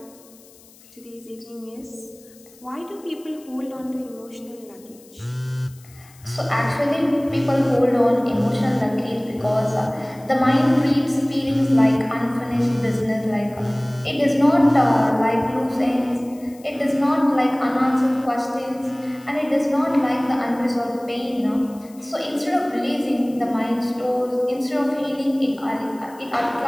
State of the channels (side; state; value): left; noise; hiss, 25 dB below the sound